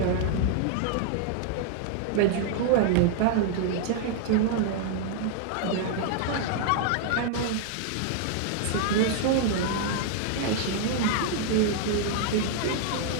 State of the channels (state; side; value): different; both; correlation -0.01